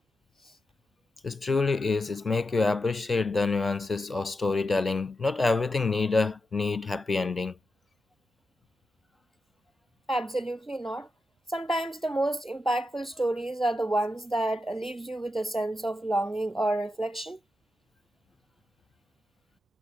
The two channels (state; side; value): normal; both; correlation 0.88